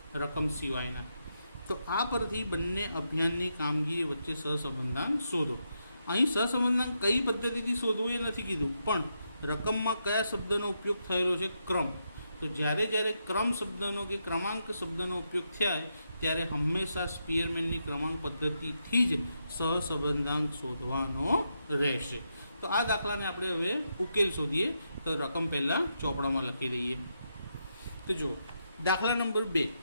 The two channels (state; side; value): inverted; both; correlation -0.83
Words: રકમ સિવાયના. તો આ પરથી બંને અભિયાનની કામગીરી વચ્ચે સહસંબંધાંક શોધો. અહીં સહસંબંધાંક કઈ પદ્ધતિથી શોધવું એ નથી કીધું, પણ રકમમાં કયા શબ્દનો ઉપયોગ થયેલો છે? ક્રમ. તો જ્યારે ક્રમ શબ્દનો કે ક્રમાંક શબ્દનો ઉપયોગ થાય ત્યારે હંમેશા સ્પીયરમેનની ક્રમાંક પદ્ધતિથી જ સહસંબંધાંક શોધવાનો રહેશે. તો આ દાખલાને આપણે હવે ઉકેલ શોધીએ. તો રકમ પહેલાં ચોપડામાં લખી દઈએ. તો જુઓ, દાખલા નંબર 2